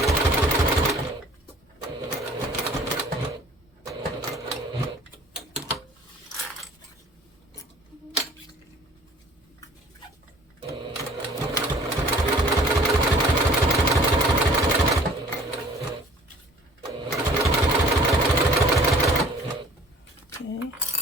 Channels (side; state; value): both; normal; correlation 0.52